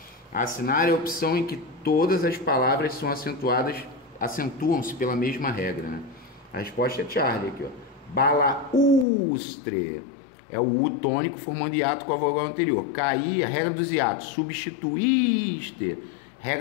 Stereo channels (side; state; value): right; drops out; at 9.1 s